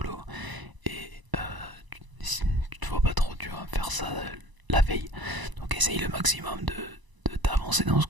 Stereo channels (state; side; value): late; left; 1.0 ms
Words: Et tu te vois pas trop, tu vas faire ça la veille. Donc essaye le maximum de t'avancer dans ce